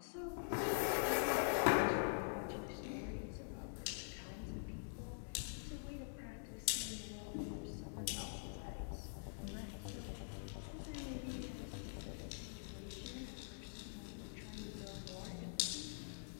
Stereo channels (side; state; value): right; silent; digital silence